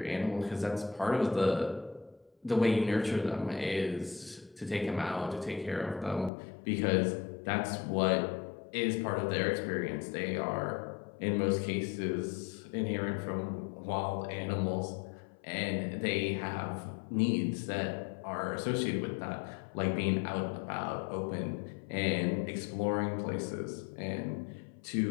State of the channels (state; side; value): drops out; right; at 6.3 s